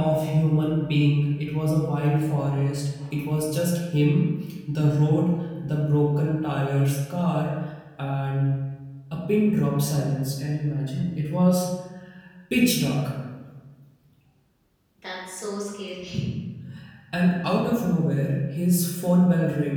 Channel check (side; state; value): both; identical; correlation 1.00